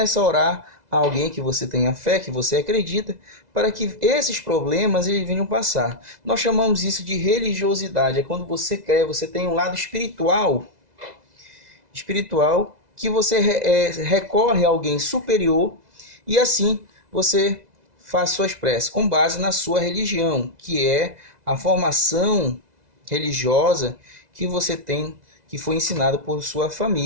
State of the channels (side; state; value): left; late; 2.0 ms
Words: a orar a alguém que você tenha fé, que você acredita, para que esses problemas eles venham passar. Nós chamamos isso de religiosidade. É quando você crê, você tem um lado espiritual que você recorre a alguém superior e assim você faz suas preces com base na sua religião, que é a formação religiosa que você tem, que foi ensinado por sua